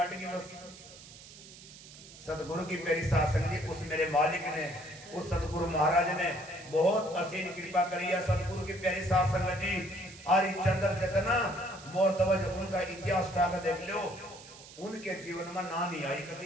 की बस। सतगुरु की मेरी सासंग जी, उस मेरे मालिक ने, उस सतगुरु महाराज ने बहुत असीम कृपा करी है। सतगुरु की प्यारी साथ संगत जी, हरिचंद्र जितना मोरतवज उनका इतिहास उठा कर देख लो, उनके जीवन में ना नहीं आई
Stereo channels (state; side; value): noise; right; hiss, 18 dB below the sound